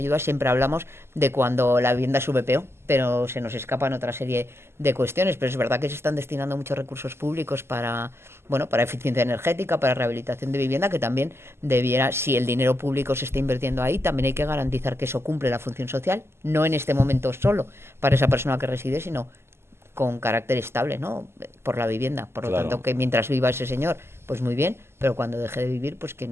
siempre hablamos de cuando la vivienda es VPO, pero se nos escapan otra serie de cuestiones. Pero es verdad que se están destinando muchos recursos públicos para eficiencia energética, para rehabilitación de vivienda, que también debiera, si el dinero público se está invirtiendo ahí, también hay que garantizar que eso cumple la función social, no en este momento solo para esa persona que reside, sino con carácter estable, ¿no? Por la vivienda. Por lo tanto, que mientras viva ese señor, pues muy bien, pero cuando deje de vivir, pues que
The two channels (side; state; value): left; late; 0.12 ms